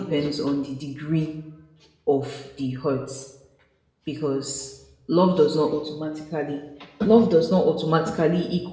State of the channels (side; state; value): both; identical; correlation 1.00